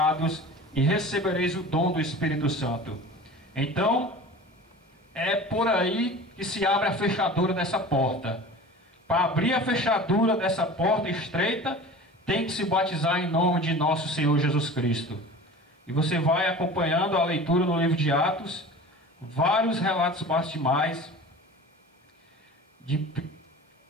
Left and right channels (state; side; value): normal; both; correlation 0.38